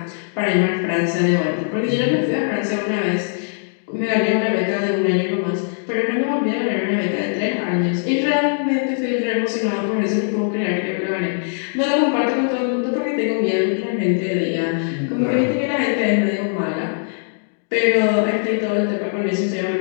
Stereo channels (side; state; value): right; silent; digital silence